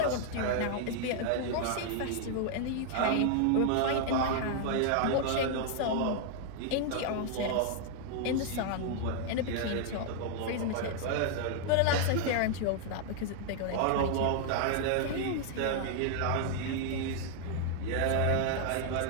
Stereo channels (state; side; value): different; both; correlation 0.00